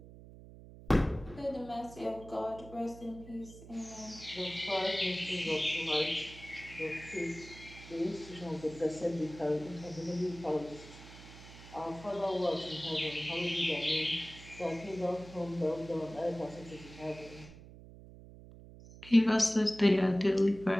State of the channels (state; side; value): noise; right; hum, 17 dB below the sound